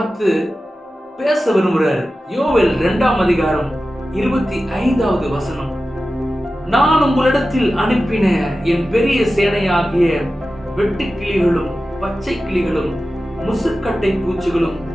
பேச விரும்புகிறார். யோவேல் 2ஆம் அதிகாரம் 25வது வசனம். நான் உங்களிடத்தில் அனுப்பின என் பெரிய சேனையாகிய வெட்டுக்கிளிகளும் பச்சை கிளிகளும் முசுக்கட்டை பூச்சிகளும்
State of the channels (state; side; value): normal; both; correlation 0.94